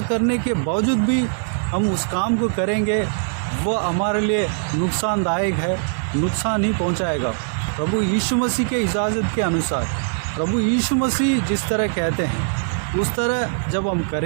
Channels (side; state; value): left; silent; digital silence